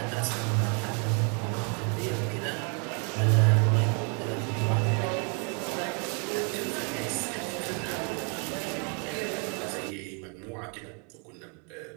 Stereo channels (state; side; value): quieter; left; 36.4 dB